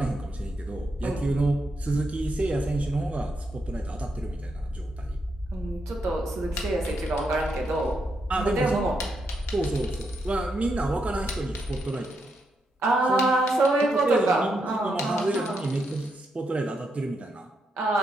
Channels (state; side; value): normal; both; correlation 0.82